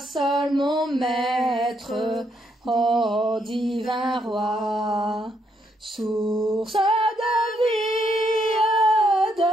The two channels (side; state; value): both; normal; correlation 0.75